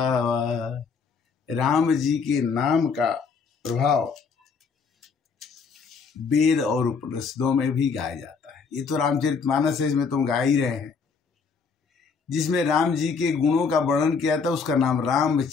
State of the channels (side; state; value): right; quieter; 5.4 dB